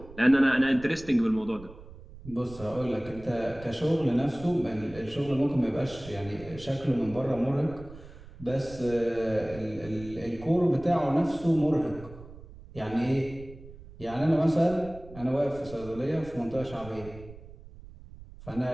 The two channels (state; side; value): noise; right; rumble, 17 dB below the sound